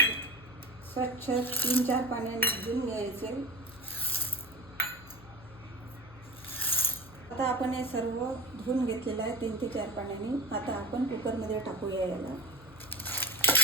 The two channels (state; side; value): noise; left; hum, 20 dB below the sound